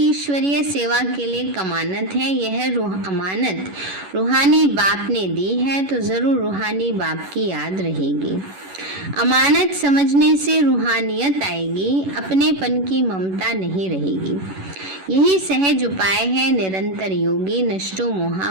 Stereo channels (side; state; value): left; late; 11 ms